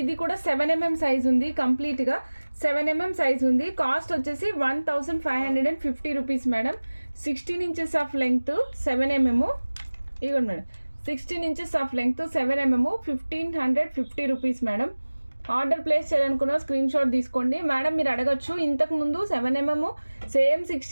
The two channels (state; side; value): inverted; both; correlation -1.00